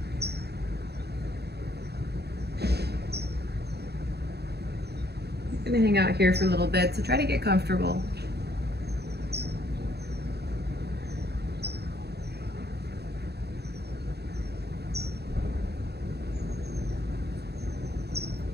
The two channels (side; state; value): left; late; 0.48 ms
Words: I'm gonna hang out here for a little bit, so try to get comfortable.